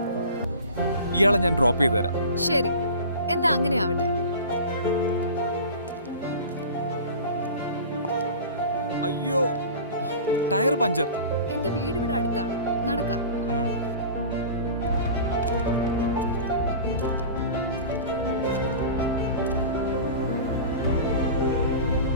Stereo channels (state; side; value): inverted; both; correlation -0.36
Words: ഇയാളെ ഞാൻ ഡ്രോപ്പ് ചെയ്തു തരാം. ശരി, എന്നാ അങ്ങനെ ആവട്ടെ. അയ്യോ, ടയർ പഞ്ചർ. എന്റെ വീട് ഇവിടെ അടുത്താണ്, നടക്കാം.